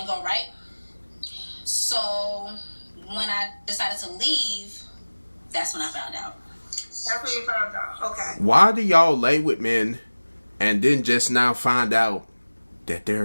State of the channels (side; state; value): both; inverted; correlation -1.00